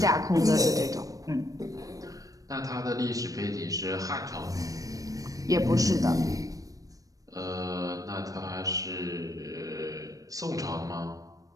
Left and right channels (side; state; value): left; late; 0.17 ms